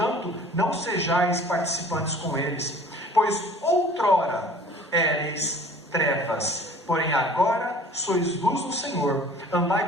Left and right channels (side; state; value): both; normal; correlation 0.48